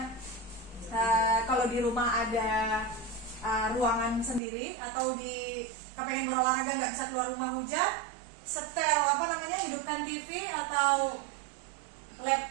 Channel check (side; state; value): left; drops out; at 4.4 s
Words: kalau di rumah ada ruangan sendiri, atau kepengen berolahraga nggak bisa keluar rumah hujan, setel hidupkan TV atau